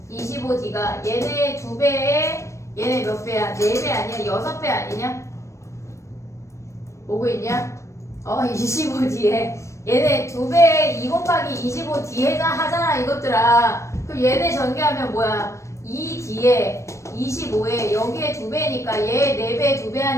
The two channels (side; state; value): right; late; 0.14 ms